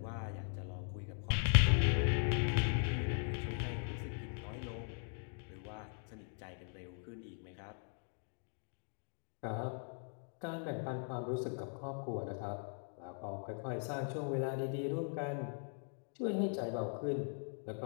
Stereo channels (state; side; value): silent; right; 51 dB below the other